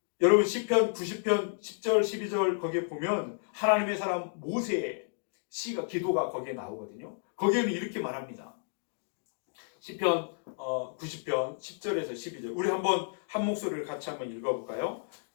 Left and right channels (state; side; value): silent; right; digital silence